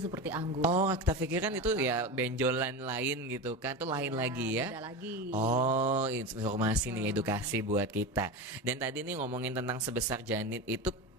seperti anggur. Kita pikirkan itu ya benjolan lain gitu kan, itu lain lagi ya. Beda lagi. Informasi nih, edukasi buat kita. Dan tadi nih ngomongin tentang sebesar janin itu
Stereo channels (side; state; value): both; normal; correlation 0.23